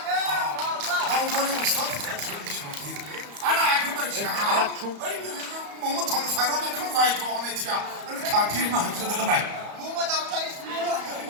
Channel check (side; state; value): left; late; 34 ms